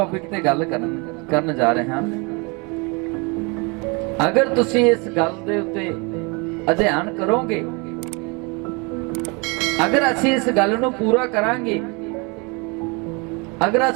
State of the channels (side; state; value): left; quieter; 29.9 dB